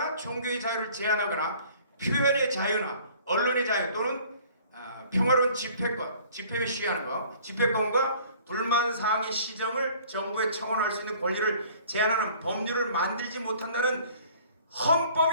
종교의 자유를 제한하거나 표현의 자유나 언론의 자유 또는 평화로운 집회권, 집회에 시위하는 거, 집회권과 불만사항의 시정을 정부에 청원할 수 있는 권리를 제한하는 법률을 만들지 못한다는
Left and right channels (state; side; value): inverted; both; correlation -0.52